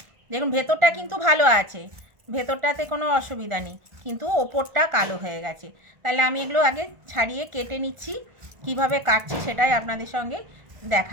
দেখুন ভেতরটা কিন্তু ভালো আছে, ভেতরটাতে কোনো অসুবিধা নেই, কিন্তু ওপরটা কালো হয়ে গেছে। তাহলে আমি এগুলো আগে ছাড়িয়ে কেটে নিচ্ছি। কিভাবে কাটছি সেটাই আপনাদের সঙ্গে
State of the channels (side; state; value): left; late; 1.4 ms